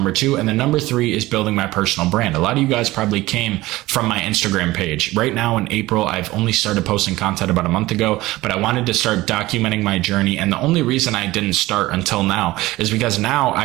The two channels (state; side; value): quieter; left; 18.4 dB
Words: 2, and then number 3 is building my personal brand. A lot of you guys probably came from my Instagram page. Right now in April, I've only started posting content about a month ago, but I wanted to start documenting my journey. And the only reason I didn't start until now is because now